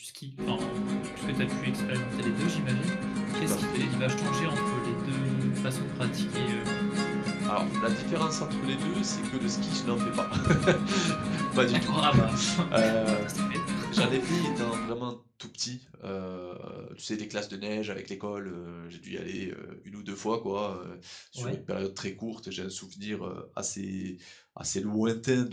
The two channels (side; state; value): both; identical; correlation 1.00